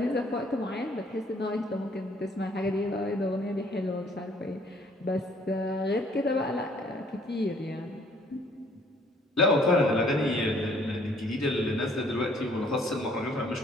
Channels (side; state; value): both; normal; correlation 0.61